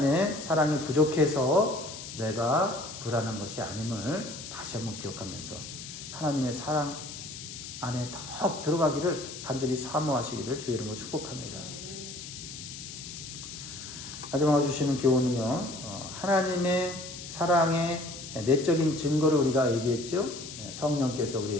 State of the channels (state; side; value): noise; left; hiss, 11 dB below the sound